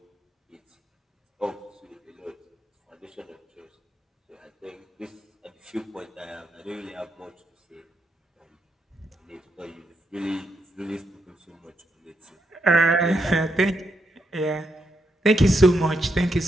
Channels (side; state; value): both; normal; correlation 0.80